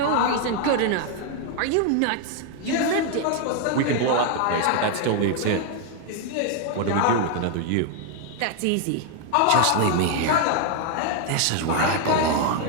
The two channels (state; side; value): different; both; correlation 0.00